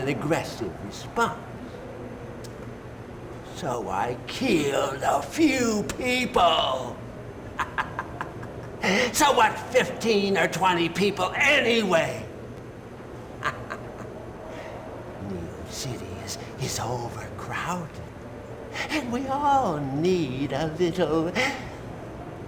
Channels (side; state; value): both; identical; correlation 1.00